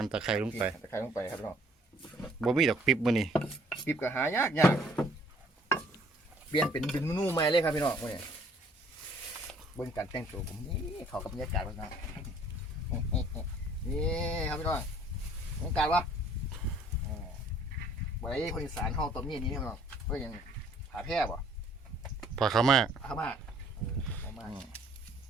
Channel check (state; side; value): normal; both; correlation 0.58